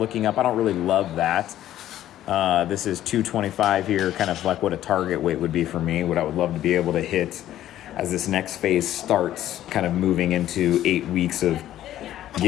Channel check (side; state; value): right; quieter; 12.7 dB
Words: up. I don't really love that. This is 225 here, kind of like what a target weight would be for me, what I would love to be able to hit as this next phase starts, kind of moving into 8 weeks of